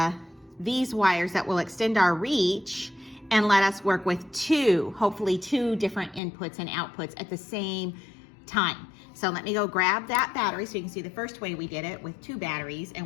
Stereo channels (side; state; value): right; drops out; at 6.2 s